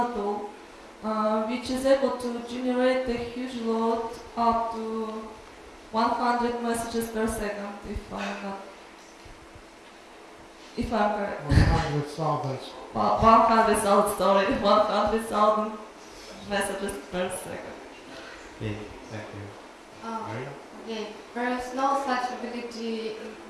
tool which is able to generate a huge load up to 100 messages per second, if I'm correct. 100,000. 100,000, sorry, 100,000 messages per second. Okay, thank you. Maria? Okay, there is no such ability in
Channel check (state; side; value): identical; both; correlation 1.00